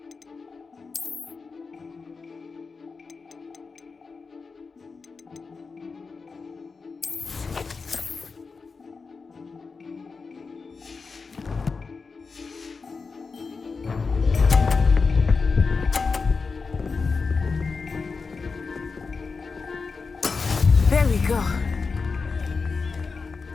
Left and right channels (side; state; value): right; quieter; 4.6 dB